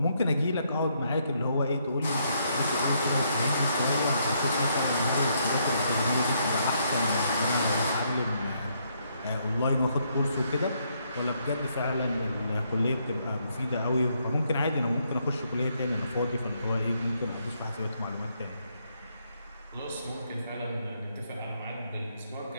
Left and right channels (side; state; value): both; inverted; correlation -0.74